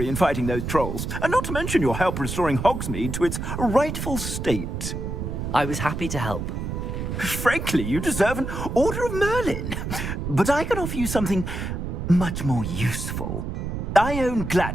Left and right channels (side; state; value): right; noise; rumble, 4 dB below the sound